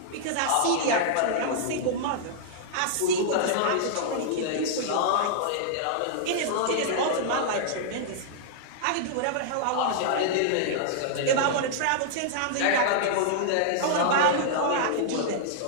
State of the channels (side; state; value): both; different; correlation -0.01